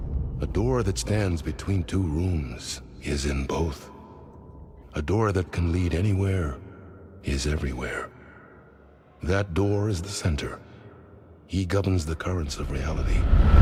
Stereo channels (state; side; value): identical; both; correlation 1.00